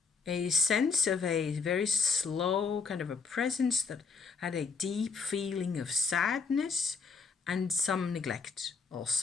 a sense of a very slow kind of a presence that had a deep feeling of sadness and some neglect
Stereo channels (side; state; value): right; quieter; 5.0 dB